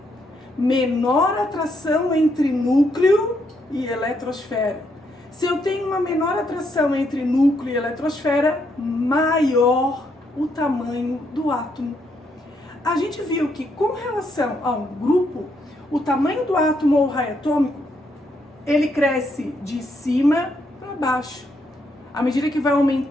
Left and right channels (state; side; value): normal; both; correlation 0.76